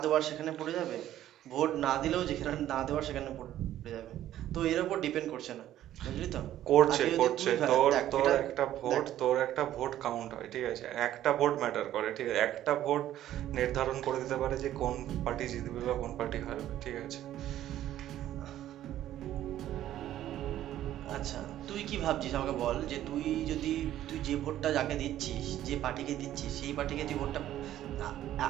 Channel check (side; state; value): left; quieter; 12.6 dB